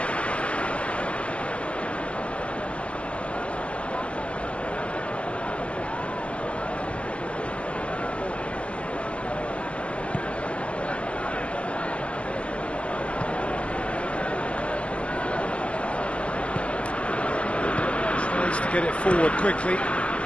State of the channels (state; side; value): late; right; 0.058 ms